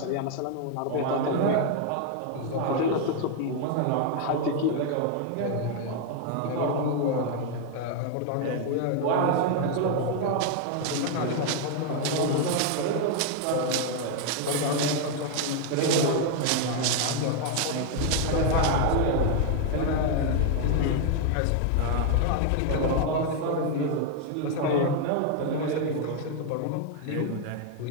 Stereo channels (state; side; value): different; both; correlation 0.00